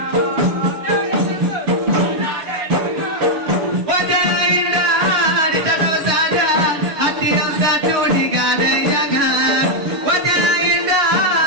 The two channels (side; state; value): left; late; 6.4 ms